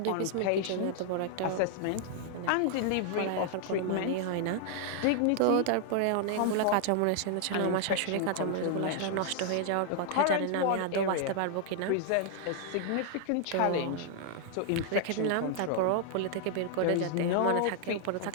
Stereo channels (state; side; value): different; both; correlation -0.01